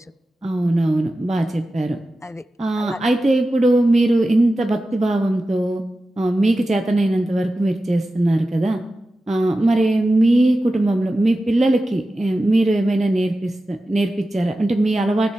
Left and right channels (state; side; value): normal; both; correlation 0.93